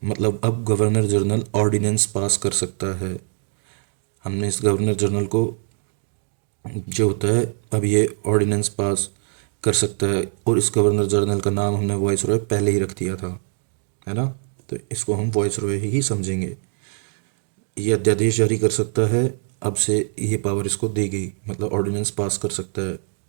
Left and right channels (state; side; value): silent; left; digital silence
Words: मतलब अब गवर्नर जनरल ऑर्डिनेंस पास कर सकता है। हमने इस गवर्नर जनरल को जो होता है अब ये ऑर्डिनेंस पास कर सकता है, और इस गवर्नर जनरल का नाम हमने वॉइस रॉय पहले ही रख दिया था, है ना, तो इसको हम वॉइस रॉय ही समझेंगे। ये अध्यादेश जारी कर सकता है, अब से ये पावर इसको दी गई, मतलब ऑर्डिनेंस पास कर सकता है।